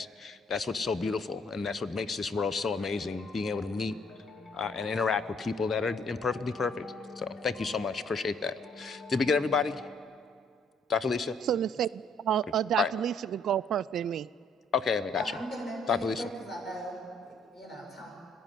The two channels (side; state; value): both; normal; correlation 0.65